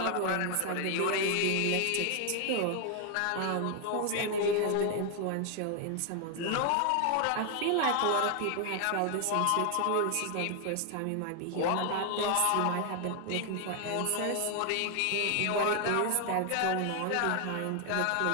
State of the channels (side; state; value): both; different; correlation 0.00